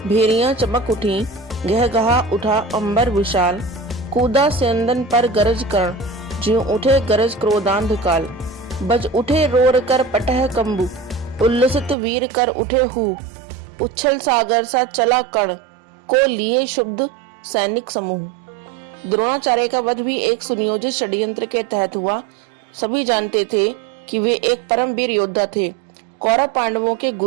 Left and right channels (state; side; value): drops out; left; at 12.0 s